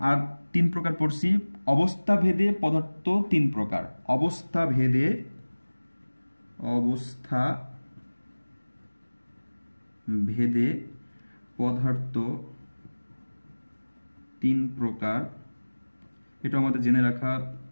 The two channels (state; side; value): inverted; both; correlation -1.00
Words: আর 3 প্রকার পড়ছি। অবস্থা ভেদে পদার্থ 3 প্রকার, অবস্থা ভেদে পদার্থ 3 প্রকার, এটা আমাদের জেনে রাখা